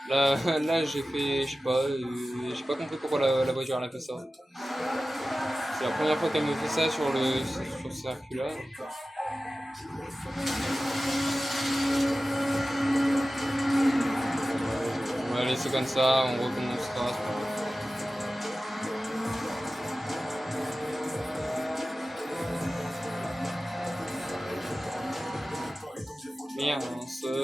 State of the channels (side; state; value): both; normal; correlation 0.95